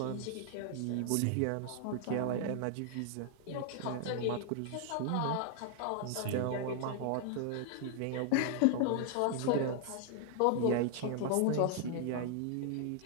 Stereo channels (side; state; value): both; different; correlation 0.00